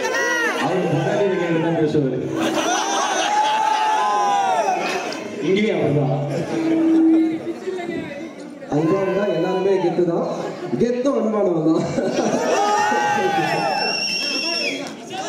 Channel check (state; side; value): identical; both; correlation 1.00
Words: இங்கேயும் அப்படிதான். அன்பானதா எல்லாருமே கெத்து தான். கெத்தும் அன்பானவன் தான்.